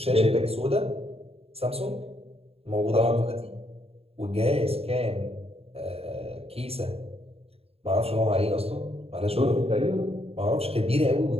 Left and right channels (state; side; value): late; left; 0.29 ms